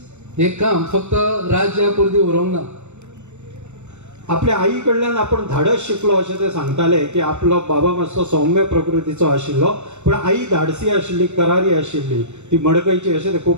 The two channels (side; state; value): left; late; 0.83 ms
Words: हे काम फक्त राज्या पुरती उरोंक ना. आपल्या आई कडल्यान आपण धाडस शिकलो अशें ते सांगताले की आपलो बाबा मातसो सौम्य प्रकृतीचो आशिल्लो पण आई धाडसी आशिल्ली करारी आशिल्ली ती मडकयची अशें ते